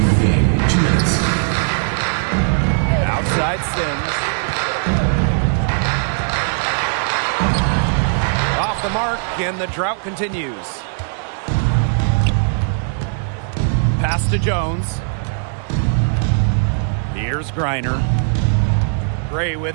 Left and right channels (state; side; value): silent; left; digital silence